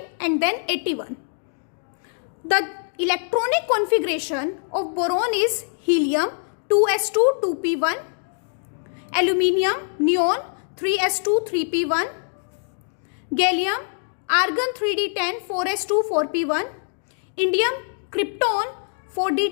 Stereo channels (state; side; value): silent; right; 63 dB below the other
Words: and then 81. The electronic configuration of boron is helium 2s2 2p1, aluminium neon 3s2 3p1, gallium argon 3d10 4s2 4p1, indium krypton